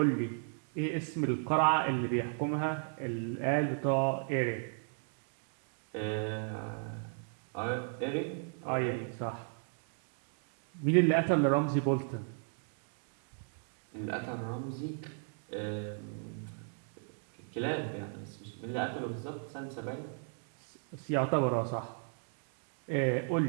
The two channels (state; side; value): silent; left; 54 dB below the other